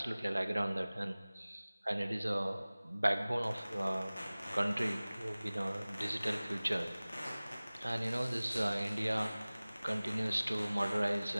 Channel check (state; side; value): inverted; both; correlation -0.99